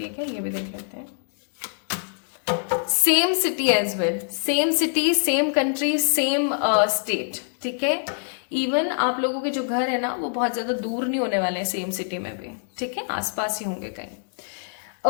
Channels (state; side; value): silent; right; digital silence